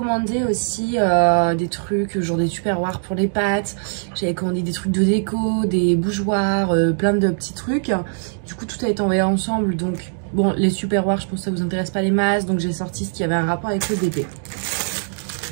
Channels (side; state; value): left; silent; digital silence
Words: aussi des trucs, genre des tupperwares pour les pâtes. J'avais commandé des trucs de déco, des bougeoirs, plein de petits trucs. Du coup, tout a été envoyé ensemble. Donc, bon, les tupperwares, je pense que ça vous intéresse pas les masses. Donc, j'ai sorti ce qui avait un rapport avec le bébé.